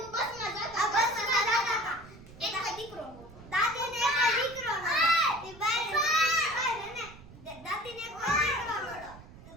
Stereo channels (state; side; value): noise; right; rumble, 19 dB below the sound